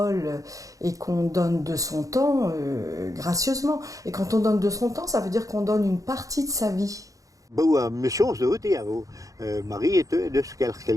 et qu'on donne de son temps, gracieusement, et quand on donne de son temps, ça veut dire qu'on donne une partie de sa vie. Mission zo te avo Marie et de ce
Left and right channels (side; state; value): left; late; 0.16 ms